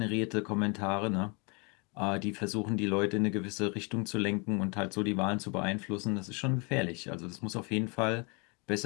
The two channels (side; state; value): right; quieter; 31.2 dB